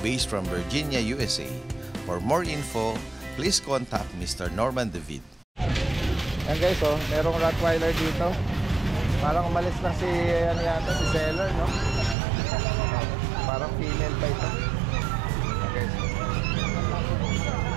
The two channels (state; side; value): drops out; left; at 12.2 s